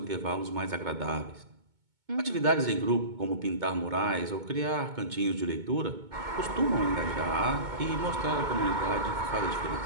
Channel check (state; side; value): late; left; 2.2 ms